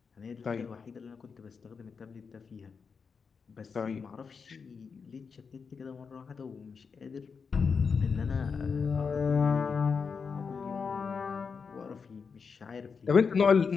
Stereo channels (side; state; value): right; quieter; 5.6 dB